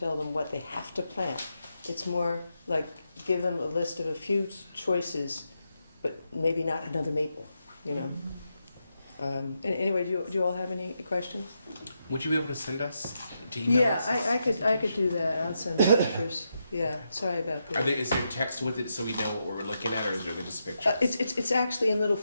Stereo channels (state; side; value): inverted; both; correlation -0.84